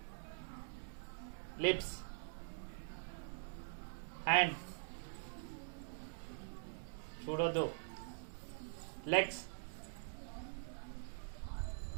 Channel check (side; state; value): left; silent; digital silence